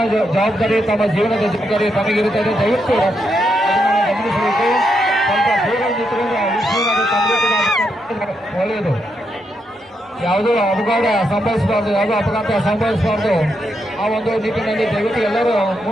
ಜವಾಬ್ದಾರಿ, ತಮ್ಮ ಜೀವನದ ಜವಾಬ್ದಾರಿ ತಮಗಿರುತ್ತದೆ. ದಯವಿಟ್ಟು ಅದನ್ನು ಗಮನಿಸಬೇಕು. ಸ್ವಲ್ಪ ದೂರ ನಿಂತುಕೊಂಡು ತಂದೆ ಕೂಡ ಒಳ್ಳೆಯದು. ಯಾವುದೋ ಅಪಘಾತ ಸಂಭವಿಸಬಾರ್ದು, ಯಾವುದೋ ಅಪಘಾತ ಸಂಭವಿಸಬಾರ್ದು. ಆ ಒಂದು ನಿಟ್ಟಿನಲ್ಲಿ ದಯವಿಟ್ಟು ಎಲ್ಲರೂ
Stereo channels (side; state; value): both; normal; correlation 0.81